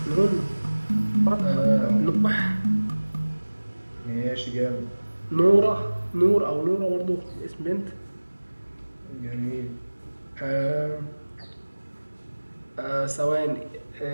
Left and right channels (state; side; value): inverted; both; correlation -1.00